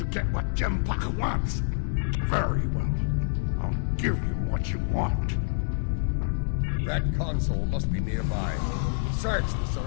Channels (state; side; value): silent; right; 60 dB below the other